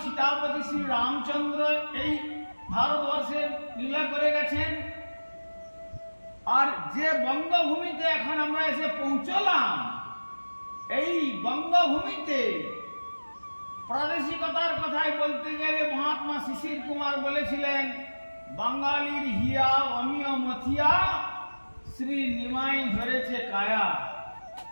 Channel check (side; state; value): both; inverted; correlation -1.00